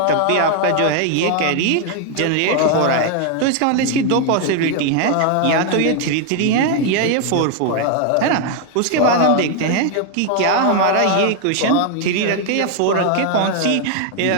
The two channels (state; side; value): different; both; correlation 0.00